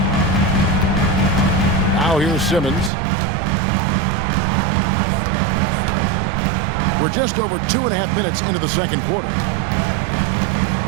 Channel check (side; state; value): left; drops out; at 2.9 s